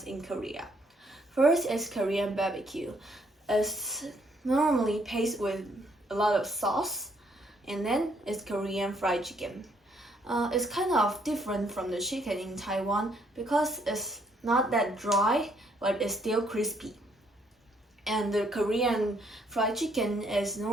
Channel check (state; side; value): normal; both; correlation 0.69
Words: in Korea. First is Korean barbecue. It's normally paced with a lot of sauce, And then it's Korean fried chicken. It's kind of different from the chicken in Taiwan because it's not that dry, but it's still crispy. And the Korean fried chicken is